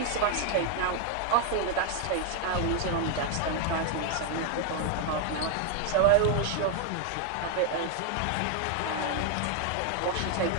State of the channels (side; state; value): both; different; correlation 0.01